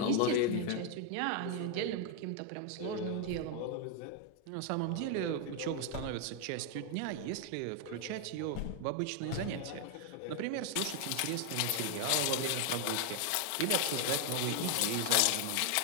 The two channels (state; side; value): different; both; correlation 0.00